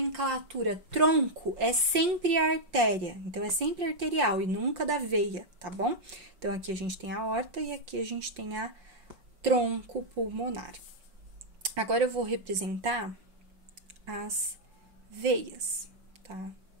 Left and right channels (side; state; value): left; late; 5.7 ms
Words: tronco é sempre a artéria, então é sempre arterial e nunca da veia, tá bom? Então, aqui a gente tem a aorta e aqui a gente tem a tronco pulmonar. Agora, eu vou representar as veias, tá?